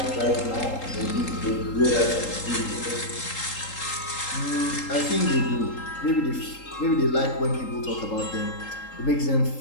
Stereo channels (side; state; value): right; late; 3.8 ms